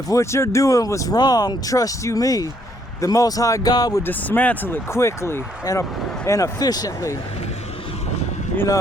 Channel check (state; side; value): normal; both; correlation 0.69